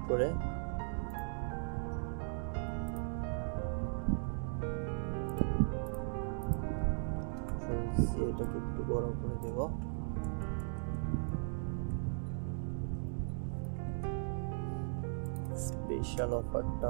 করে এটাকে একটু বড় করে দেব। স্পেশাল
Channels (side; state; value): left; silent; digital silence